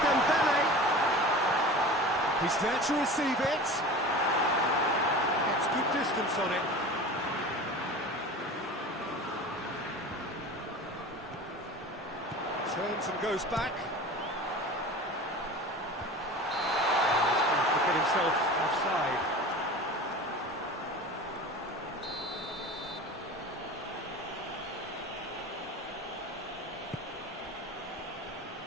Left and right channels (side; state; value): both; normal; correlation 0.35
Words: He's there to receive it. Gets good distance on it. Turns and goes back. He's going to get himself offside.